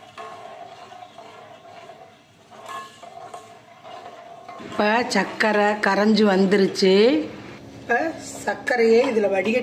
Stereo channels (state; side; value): identical; both; correlation 1.00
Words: இப்போ சர்க்கரை கரைஞ்சி வந்துருச்சு. இப்போ சர்க்கரையை இதில்